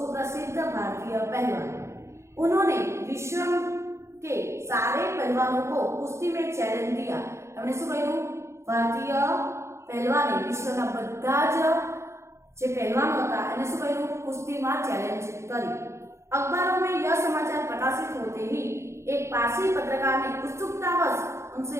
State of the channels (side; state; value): left; late; 0.13 ms